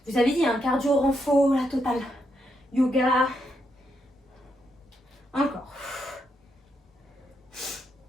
Vous avez dit, un cardio renfort, la totale. Yoga. Encore.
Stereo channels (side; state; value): both; normal; correlation 0.80